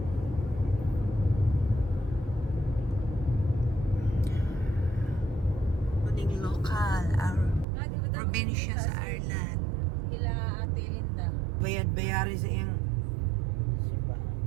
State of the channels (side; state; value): left; drops out; at 7.7 s